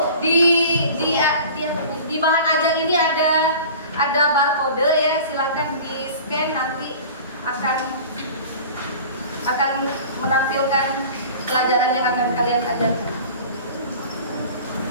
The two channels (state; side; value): inverted; both; correlation -0.41